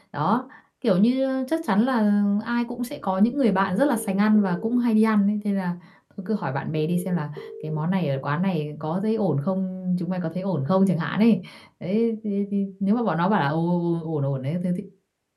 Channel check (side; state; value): both; identical; correlation 1.00